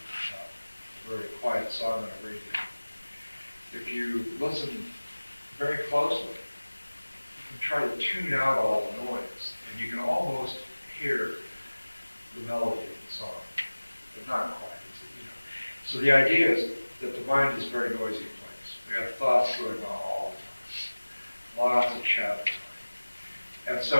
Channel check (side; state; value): both; inverted; correlation -1.00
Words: a very quiet song on a radio. If you listen very closely, you can try to tune out all the noise, and you can almost hear the melody of the song, but not quite. So the idea is that the mind is a very noisy place. We have thoughts going on all the time, lots of chatter. And